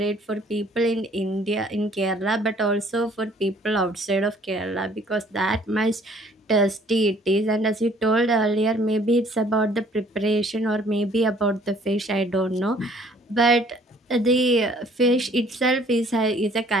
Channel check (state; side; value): normal; both; correlation 0.58